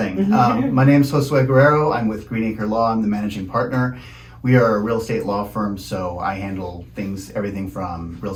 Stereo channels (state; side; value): identical; both; correlation 1.00